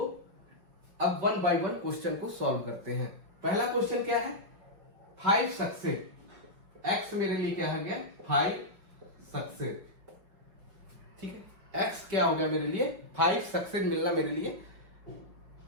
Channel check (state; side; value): late; left; 5.3 ms